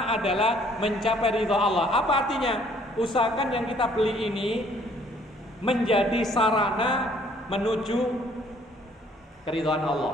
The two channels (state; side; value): normal; both; correlation 0.61